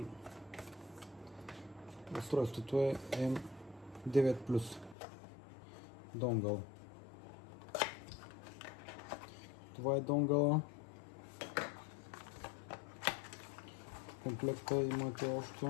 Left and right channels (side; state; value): right; drops out; at 5.0 s